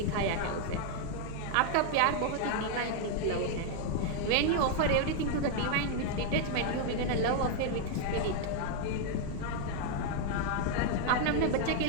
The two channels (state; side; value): different; both; correlation 0.00